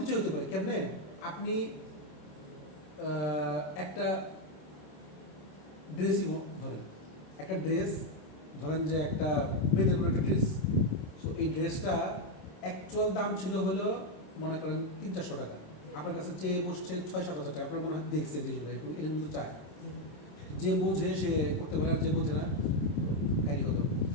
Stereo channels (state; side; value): late; right; 26 ms